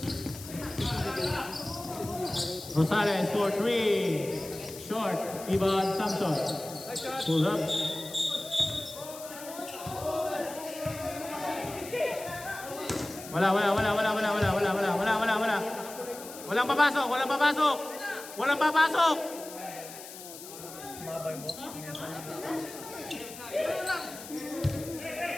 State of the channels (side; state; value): left; noise; hiss, 14 dB below the sound